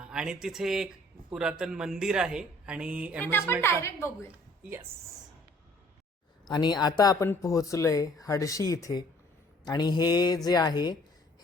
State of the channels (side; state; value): both; normal; correlation 0.57